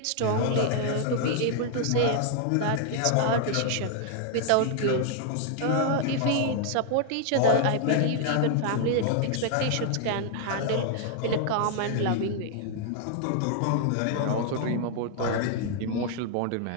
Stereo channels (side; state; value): both; different; correlation 0.00